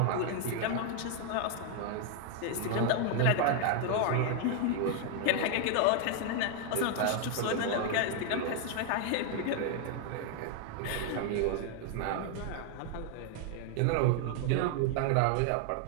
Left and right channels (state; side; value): different; both; correlation 0.00